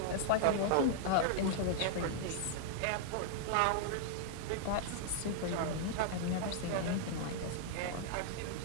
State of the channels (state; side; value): different; both; correlation -0.01